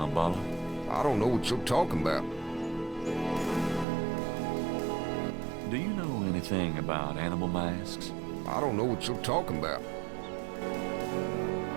I don't know what you're talking about. Do you know anything about animal masks? I don't know what you're talking about.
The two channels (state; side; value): drops out; left; at 3.9 s